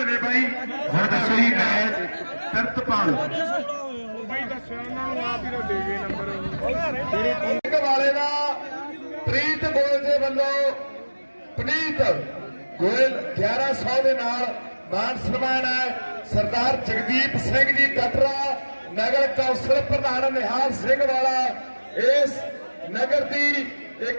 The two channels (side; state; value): both; inverted; correlation -1.00